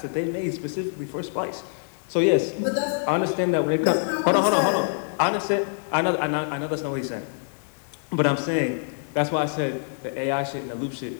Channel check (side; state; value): right; silent; digital silence